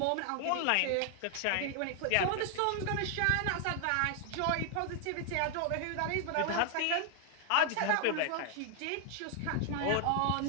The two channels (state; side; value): different; both; correlation 0.00